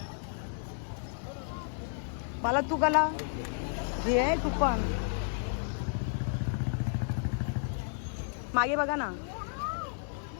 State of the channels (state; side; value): silent; right; digital silence